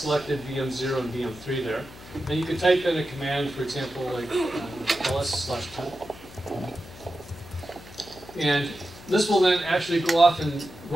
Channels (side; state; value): left; noise; hum, 18 dB below the sound